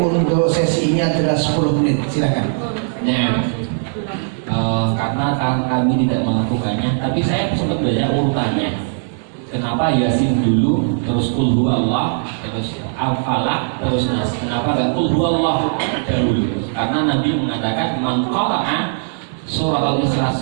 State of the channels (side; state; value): left; silent; 66 dB below the other